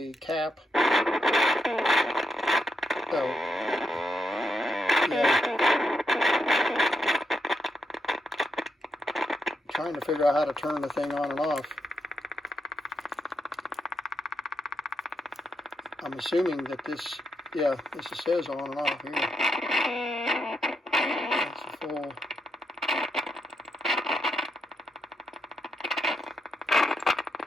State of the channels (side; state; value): both; normal; correlation 0.82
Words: cap. Oh, yeah. Trying to figure out how to turn the thing on and off. I'm assuming that this, yeah, this says on and off here. It's a full.